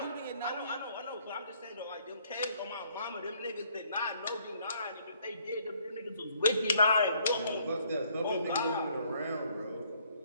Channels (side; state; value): both; inverted; correlation -0.65